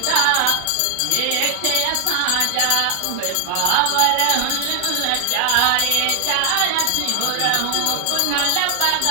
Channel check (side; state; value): both; different; correlation 0.00